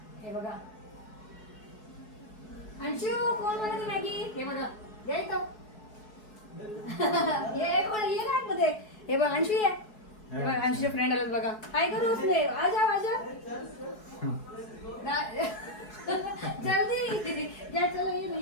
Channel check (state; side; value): late; right; 4.7 ms